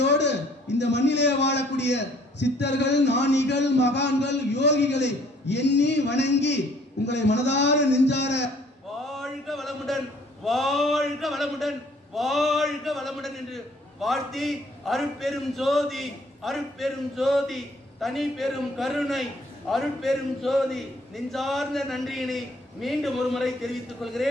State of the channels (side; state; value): both; normal; correlation 0.59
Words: இந்த மண்ணிலே வாழக்கூடிய சித்தர்கள், ஞானிகள், மகான்கள், யோகிகளை எண்ணி வணங்கி உங்களை மனதார நெஞ்சார வாழ்க வளமுடன், வாழ்க வளமுடன், வாழ்க வளமுடன் என்று வாழ்த்தி, அருட்பெரும் ஜோதி, அருட்பெரும் ஜோதி, தனி பெரும் கருணை, அருட்பெரும் ஜோதி, நெஞ்சார்ந்த நன்றியினை மீண்டும் ஒரு முறை தெரிவித்துக்